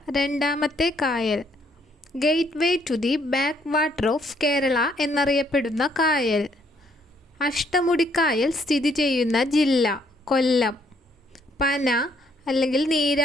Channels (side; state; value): both; normal; correlation 0.68